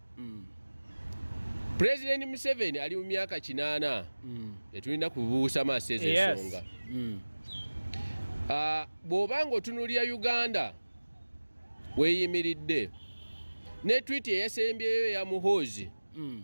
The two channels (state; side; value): inverted; both; correlation -1.00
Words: President Museveni ali mu myaka 8 etulina kubuusa maaso ezo ensonga. Bw'obanga otunuulira Uganda weeyimiridde ne tweet eyasembyeyo ya Muhoozi